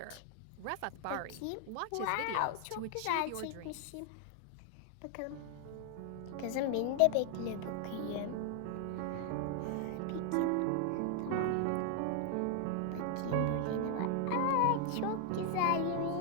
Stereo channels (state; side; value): different; both; correlation 0.00